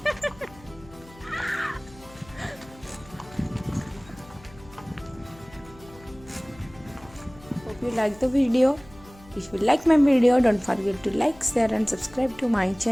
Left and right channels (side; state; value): left; noise; hum, 22 dB below the sound